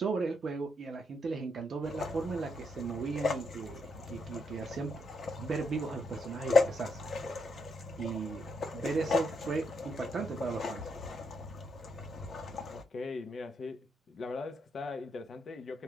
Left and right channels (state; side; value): normal; both; correlation 0.78